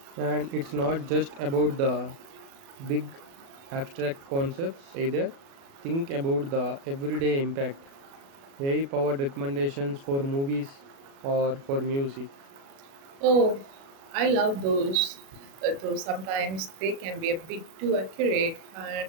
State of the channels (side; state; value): left; late; 37 ms